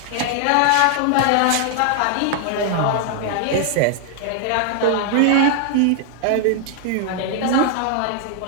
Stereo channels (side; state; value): both; different; correlation 0.00